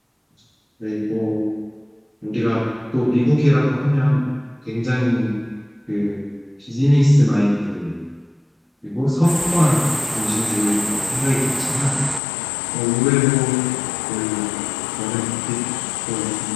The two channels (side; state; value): right; drops out; at 12.2 s